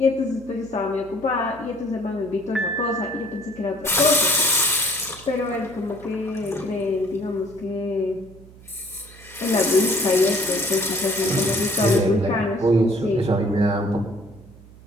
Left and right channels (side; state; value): right; noise; hum, 21 dB below the sound